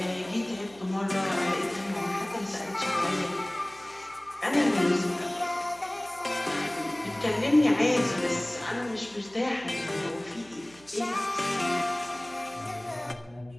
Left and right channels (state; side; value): noise; right; hum, 25 dB below the sound